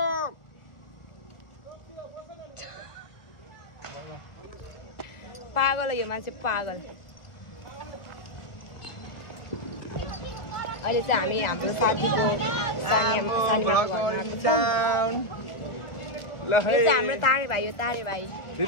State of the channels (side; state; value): right; late; 1.4 ms